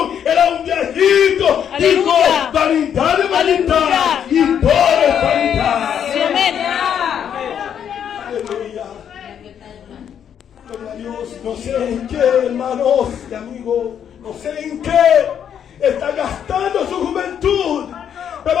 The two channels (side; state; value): right; quieter; 8.8 dB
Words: era un viejito, dijo: vanidad de vanidad y todo es vanidad. Aleluya. Gloria a Dios. No sé en qué, hermanos y amigos, no sé en qué está gastando su juventud, pero